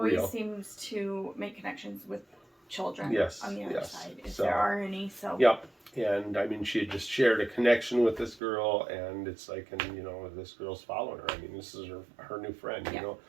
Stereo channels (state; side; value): drops out; left; at 8.4 s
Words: real. seems to make connections with children. Yes, on the other yes. side, if So, there are any. So. Yep. And she had just shared a connection with this girl, and it's like, this girl's following her. This is her new friend. Yeah.